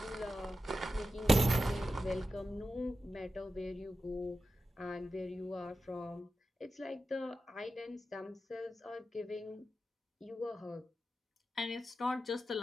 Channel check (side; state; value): both; normal; correlation 0.91